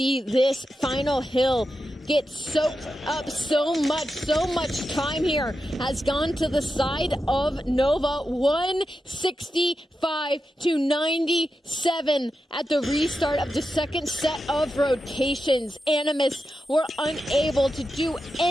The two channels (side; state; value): both; normal; correlation 0.88